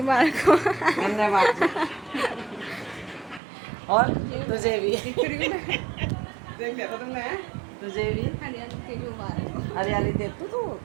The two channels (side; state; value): left; drops out; at 3.4 s